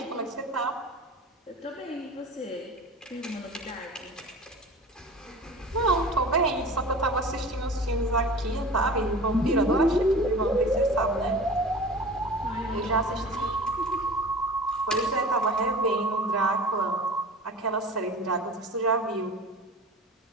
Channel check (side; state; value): both; normal; correlation 0.38